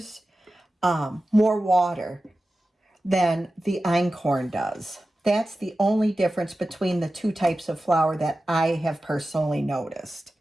more water than the einkorn does. That's the only difference between the two types of flour that I have personally noticed.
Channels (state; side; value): normal; both; correlation 0.94